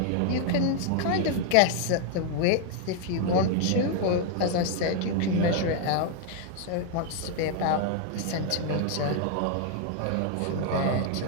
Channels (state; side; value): different; both; correlation 0.00